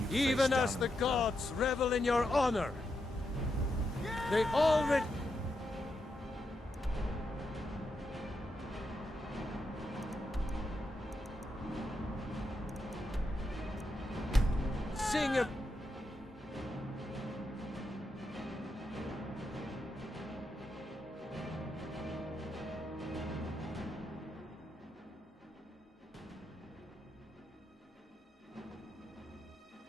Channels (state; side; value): normal; both; correlation 0.84